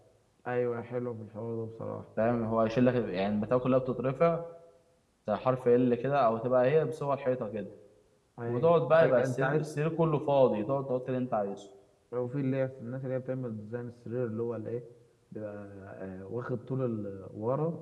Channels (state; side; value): identical; both; correlation 1.00